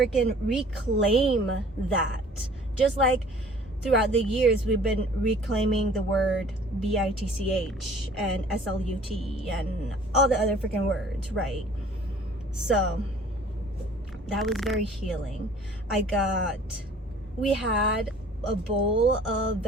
reclaim that. Just like throughout the years, we've been reclaiming the word BITCH and SLUT and all the other freaking words, right? So that was very healing. We had a bowl of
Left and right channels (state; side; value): normal; both; correlation 0.51